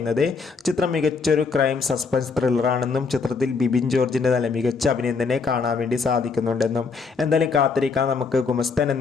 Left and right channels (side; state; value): right; quieter; 4.8 dB